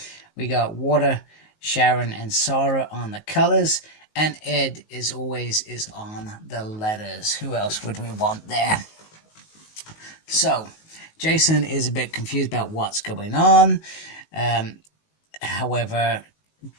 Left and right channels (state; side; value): late; right; 19 ms